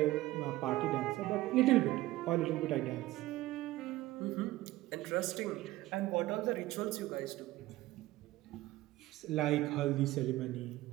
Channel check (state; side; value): quieter; left; 17.2 dB